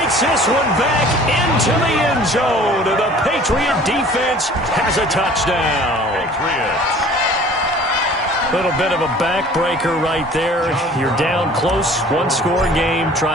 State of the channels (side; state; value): both; normal; correlation 0.48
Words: this one back into the end zone. And the Patriot defense has a touchdown. Patriots. Little bit of a backbreaker right there. You're down close, one-score game,